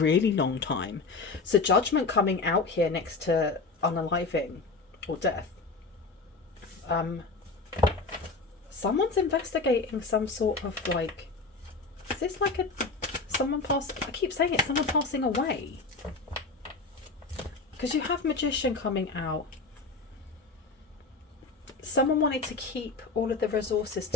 long time. So Judgment coming out here next to unaliving or death. Someone's investigating some sort of like, is this like someone I keep saying it, someone passing away. Because you have Magician coming out. Someone wanted to keep all of the resources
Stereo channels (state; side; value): quieter; right; 3.9 dB